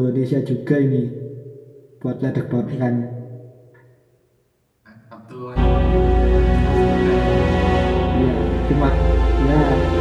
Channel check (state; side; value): identical; both; correlation 1.00